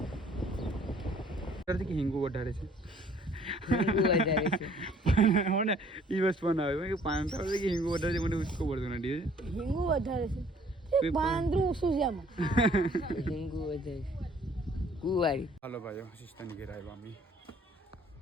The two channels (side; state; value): both; normal; correlation 0.58